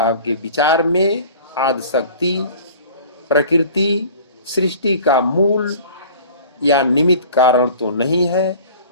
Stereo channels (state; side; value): inverted; both; correlation -0.44